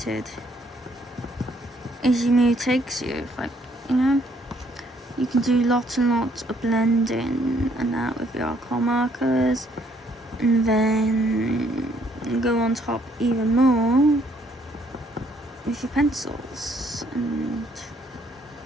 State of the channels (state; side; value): normal; both; correlation 0.67